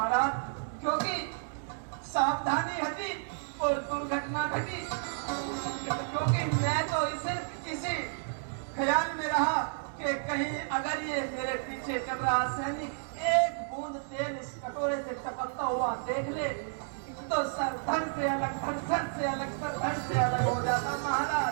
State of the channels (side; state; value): left; silent; digital silence